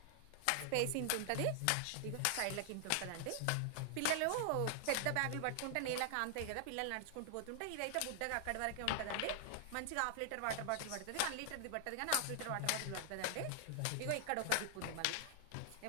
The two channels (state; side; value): different; both; correlation 0.00